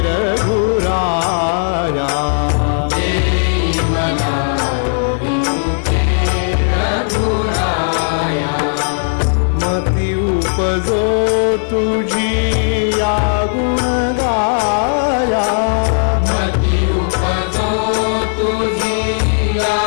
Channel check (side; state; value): right; silent; digital silence